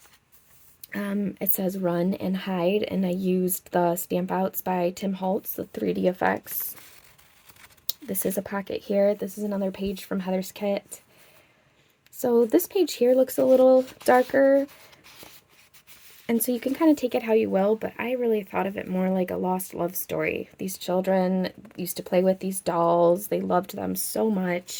It says run and hide, and I used the stamp outs by TimHoltz, the 3D effects. This is a pocket here. This is another page from Heather's kit. So this page here looks a little darker. And so you can kind of take it how you will, but I really thought of it more like a lost love story. These children used to play with these dolls. They loved them so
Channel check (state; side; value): identical; both; correlation 1.00